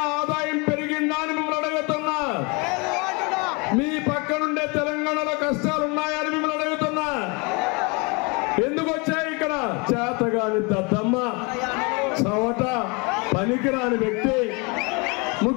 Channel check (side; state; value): right; quieter; 29.5 dB